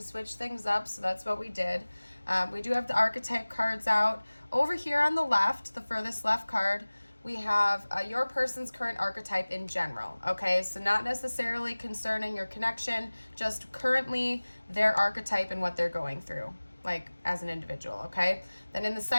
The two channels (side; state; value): both; inverted; correlation -1.00